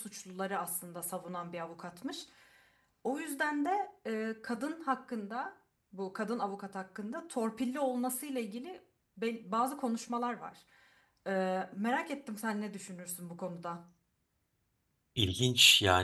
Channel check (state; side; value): identical; both; correlation 1.00